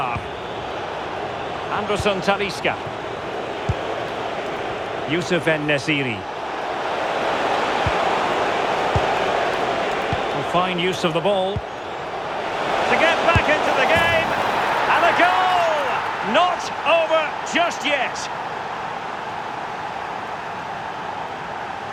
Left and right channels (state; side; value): identical; both; correlation 1.00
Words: Anderson Talisca. Youssef En-Nesyri. Fine use of the ball. To get back into the game. And a goal! Not over just yet.